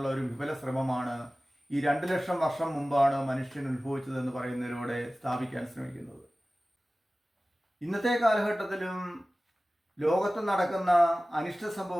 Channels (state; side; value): normal; both; correlation 0.97